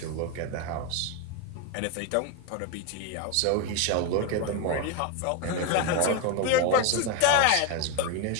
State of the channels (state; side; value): different; both; correlation 0.02